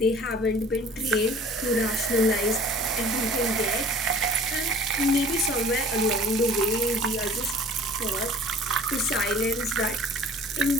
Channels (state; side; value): normal; both; correlation 0.48